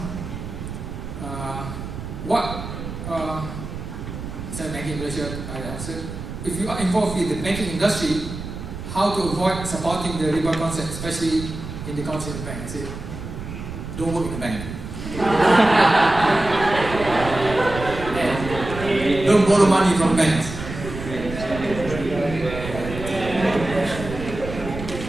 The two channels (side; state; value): right; noise; rumble, 9 dB below the sound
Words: Islamic banking in Malaysia, I answered. If you are involved in the banking industry, how to avoid supporting the riba concept, especially in the council bank? I said, don't work in the bank. Don't borrow money from banks.